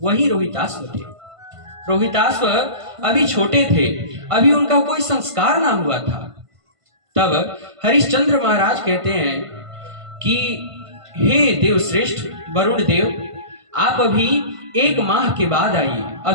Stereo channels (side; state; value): left; late; 1.5 ms